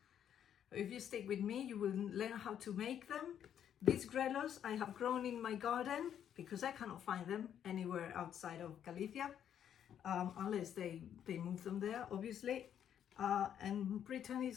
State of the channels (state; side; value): quieter; right; 9.4 dB